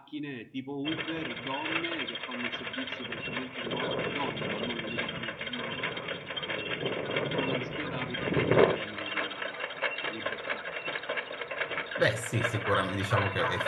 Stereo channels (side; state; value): both; identical; correlation 1.00